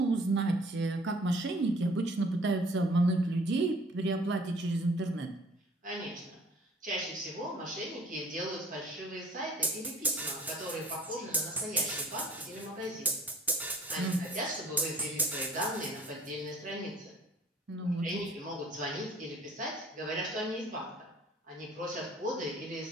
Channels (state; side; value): normal; both; correlation 0.53